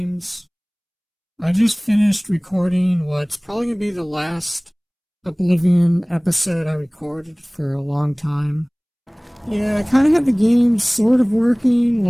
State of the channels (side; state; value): both; identical; correlation 1.00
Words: I just finished recording what's probably going to be the last Oblivion episode I recorded for a long time. Yeah, I kind of had the game sort of working,